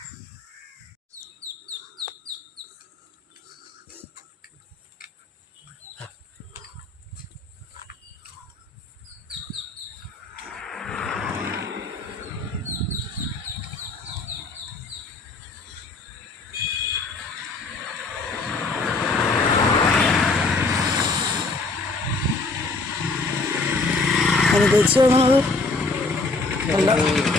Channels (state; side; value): quieter; right; 3.6 dB